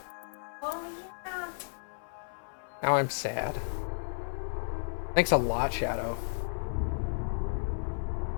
Oh yeah. Now I'm sad. Thanks a lot, Shadow.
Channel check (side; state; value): right; silent; 56 dB below the other